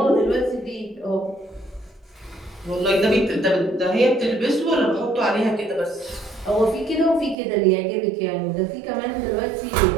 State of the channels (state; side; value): drops out; left; at 7.4 s